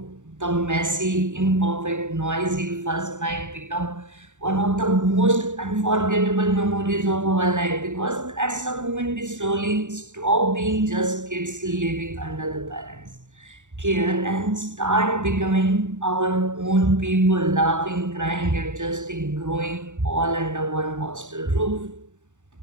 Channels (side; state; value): left; late; 0.85 ms